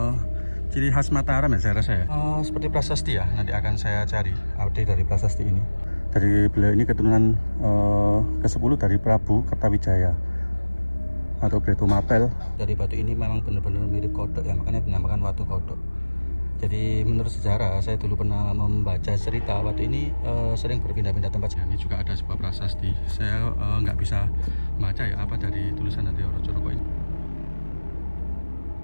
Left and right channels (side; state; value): both; inverted; correlation -1.00